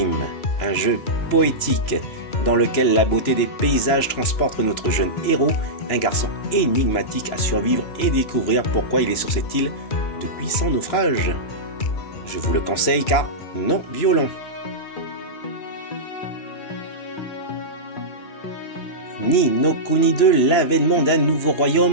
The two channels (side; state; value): right; late; 2.9 ms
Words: un jeu poétique, dans lequel la beauté des paysages transporte notre jeune héros, un garçon énigmatique à survivre et découvrir pourquoi il est sur cette île depuis son naufrage. Je vous le conseille car non violent. Ni no Kuni 2, l'avènement d'un nouveau